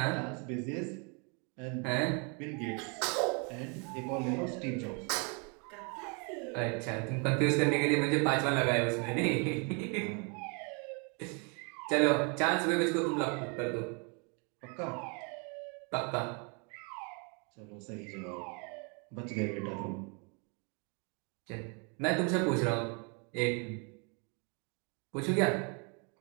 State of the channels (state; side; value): quieter; left; 34.8 dB